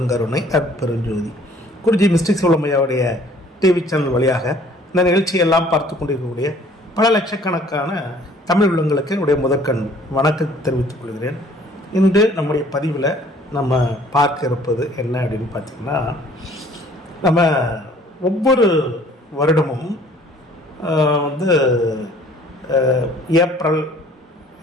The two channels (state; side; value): normal; both; correlation 0.56